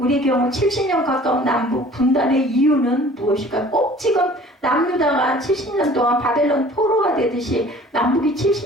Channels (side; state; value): both; normal; correlation 0.49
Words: 경우 70년 가까운 남북 분단의 이유는 무엇일까? 꼭 지금 남유다가 70년 동안 바벨론 포로가 되듯이 남북이